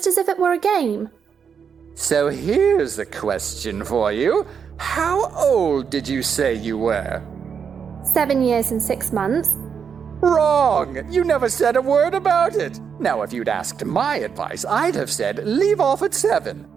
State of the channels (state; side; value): quieter; left; 6.8 dB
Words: as if it were a game. So here's a question for you. How old did you say you were? 7 years and 6 months. Wrong! You never said a word about it. Now, if you'd asked my advice, I'd have said leave off at 7,